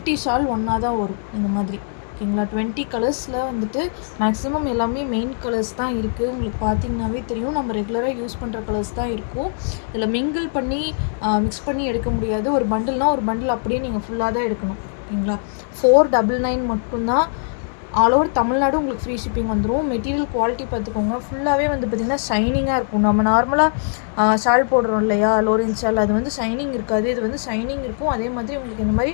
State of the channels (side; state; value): right; silent; digital silence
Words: ஷால் ஒன்றா தான் வரும் இந்த மாதிரி. ஓகேங்களா? 20 கலர்ஸில் வந்துட்டு மேக்ஸிமம் எல்லாமே மெயின் கலர்ஸ் தான் இருக்குது. உங்களுக்கு பார்த்தீங்கன்னாவே தெரியும், நம்ம ரெகுலராக யூஸ் பண்ணுற கலர்ஸ் தான் இருக்கும். இதில் மிங்கிள் பண்ணி மிக்ஸ் பண்ணி எடுக்க முடியாது. ஒரு பண்டில்னால் ஒரு பண்டில் அப்படியே நீங்கள் ஃபுல்லாக தான் எடுக்கணும். ஓகேங்களா? 499 மட்டும்தான். ஆல் ஓவர் தமிழ்நாடு உங்களுக்கு ஃப்ரீ ஷிப்பிங் வந்துடும். மெட்டீரியல் குவாலிட்டி பார்த்துக்கோங்க. ஃபுல்லாகவே வந்து பார்த்திங்கன்னா ஷைனிங்காக இருக்கும். நம்ம நார்மலாக ஷால் போடுறோம் இல்லையா, லோரன்ஸ் ஷால், அது வந்து ஷைனிங் இருக்காது. இது வந்து ஷைனிங் இருக்கும். அதே மாதிரி உங்களுக்கு இந்த மாதிரி